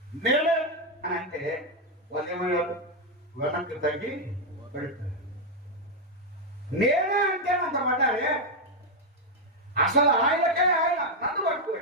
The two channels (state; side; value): normal; both; correlation 0.01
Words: నేనే అని అంటే వాళ్ళు ఏమయ్యారు? వెనక్కి తగ్గి పెడతారు. నేనే అంటే అంత పడ్డారే. అసలు ఆయనకే ఆయన నన్ను